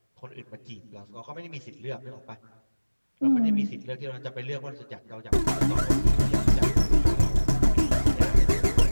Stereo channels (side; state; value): both; inverted; correlation -1.00